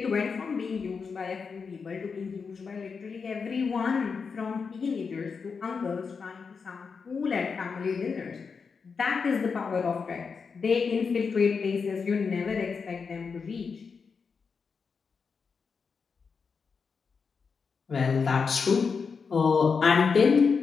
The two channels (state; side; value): quieter; right; 5.4 dB